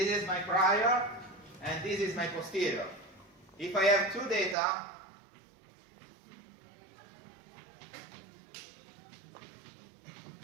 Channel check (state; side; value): drops out; left; at 4.5 s